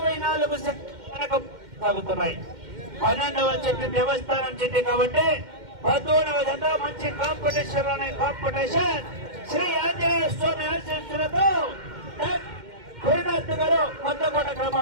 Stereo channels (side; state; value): left; late; 2.1 ms